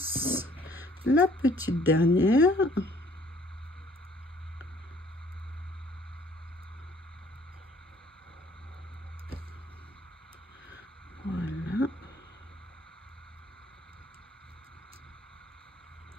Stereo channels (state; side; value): normal; both; correlation 0.58